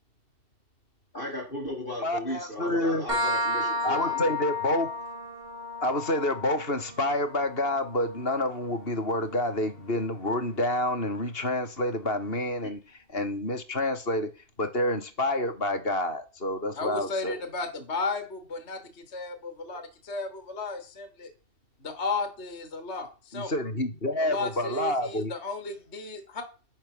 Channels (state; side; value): late; right; 2.7 ms